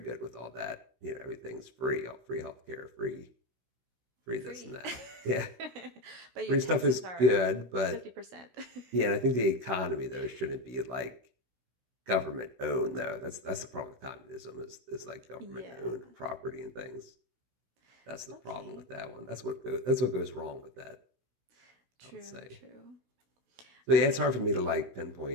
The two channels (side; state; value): left; late; 16 ms